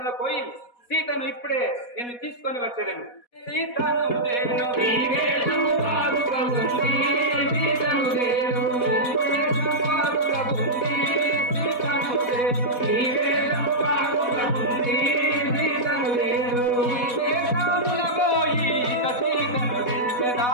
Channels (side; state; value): right; late; 4.1 ms